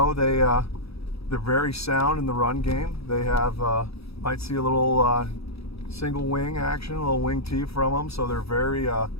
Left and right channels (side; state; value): right; late; 0.77 ms